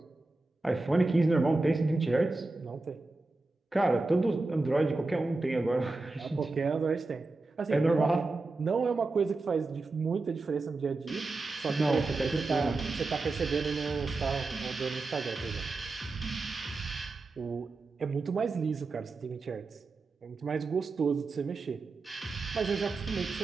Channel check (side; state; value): left; quieter; 3.4 dB